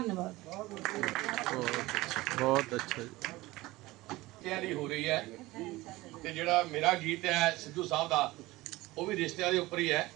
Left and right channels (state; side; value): quieter; left; 19.5 dB